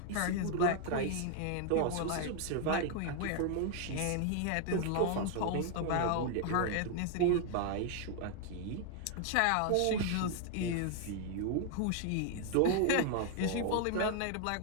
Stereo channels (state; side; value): different; both; correlation 0.00